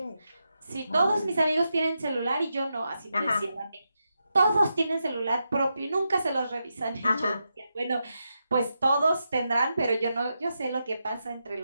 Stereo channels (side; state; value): both; inverted; correlation -0.86